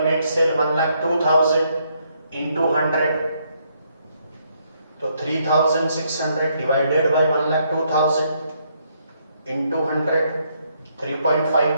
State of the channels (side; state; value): both; inverted; correlation -0.73